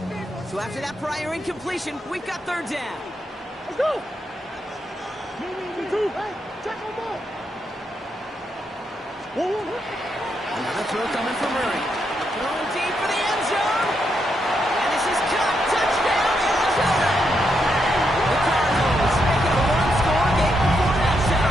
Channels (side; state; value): both; normal; correlation 0.81